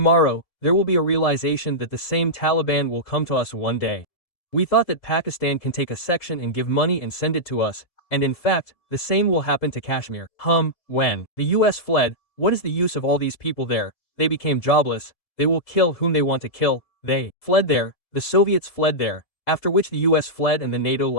there will be a realization that the same Taliban will come to us one day. We thought that Pakistan can take a section and give money and send it to us, and in fact, the same will happen to Kashmir. When the US fled, what is the use of all these people there? They became jobless, they will kill whom they want to kill, they fled there, the Soviets fled there, after which the US fled and the NATO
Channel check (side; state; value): right; late; 3.7 ms